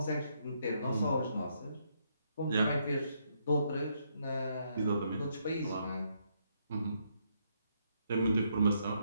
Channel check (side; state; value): both; inverted; correlation -0.75